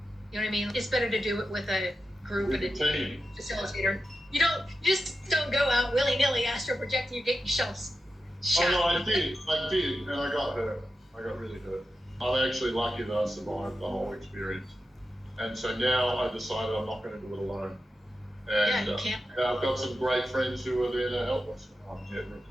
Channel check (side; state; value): both; normal; correlation 0.91